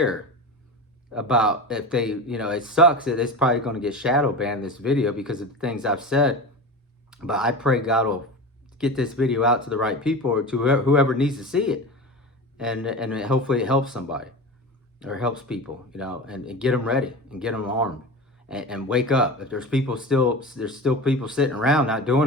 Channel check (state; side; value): normal; both; correlation 0.29